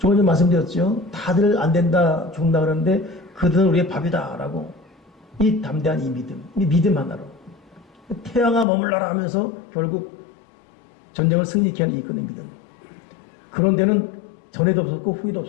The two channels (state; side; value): drops out; right; at 8.7 s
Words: 전에 말씀드렸죠. 다들 안 된다, 죽는다 그러는데 그들은 우리의 밥이다 라고. 이 담대한 이 믿음 하나로 태양아 머물러라 하면서 결국 전쟁을 승리케 하는 이끄는 믿음. 그런 데는 전에도 없었고 후에도